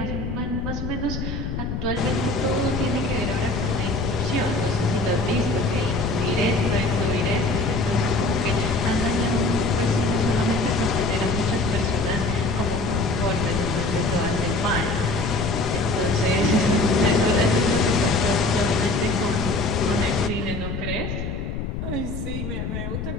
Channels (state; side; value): noise; left; rumble, 4 dB below the sound